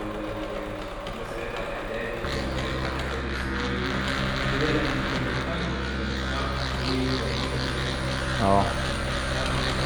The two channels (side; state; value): both; identical; correlation 1.00